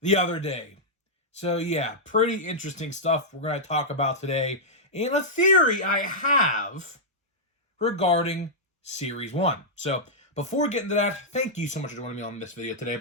the other day. So yeah, pretty interesting stuff we're going to talk about today. And a theory I have regarding Series 1. So, before we get into that, thank you so much for joining me on this video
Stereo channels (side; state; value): both; normal; correlation -0.08